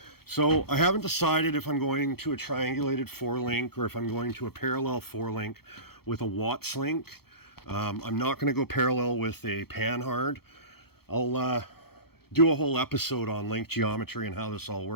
So I haven't decided if I'm going to a triangulated 4-link or if I'm going to a parallel 4-link with a Watts link. I'm not going to go parallel with a panhard. I'll do a whole episode on link geometry and how this all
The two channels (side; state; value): right; late; 0.96 ms